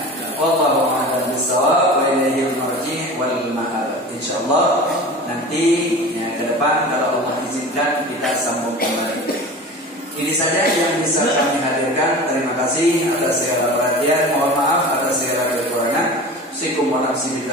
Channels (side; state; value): both; normal; correlation 0.35